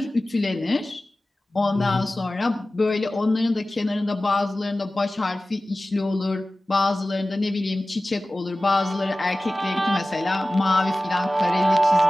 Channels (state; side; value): normal; both; correlation 0.97